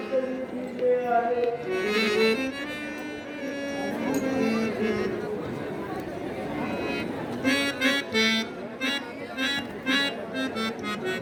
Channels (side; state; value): both; identical; correlation 1.00